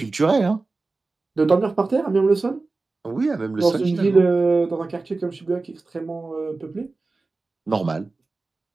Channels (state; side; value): quieter; left; 3.6 dB